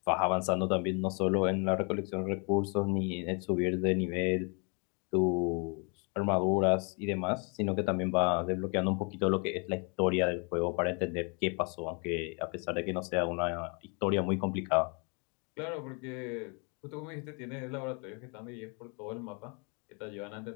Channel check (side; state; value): right; quieter; 35.3 dB